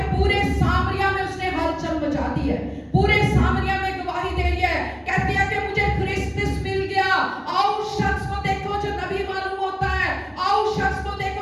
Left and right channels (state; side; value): identical; both; correlation 1.00